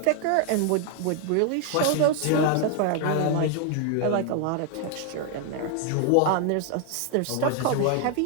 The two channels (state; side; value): different; both; correlation 0.00